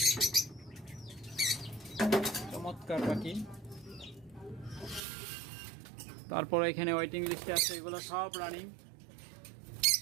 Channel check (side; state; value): left; drops out; at 5.0 s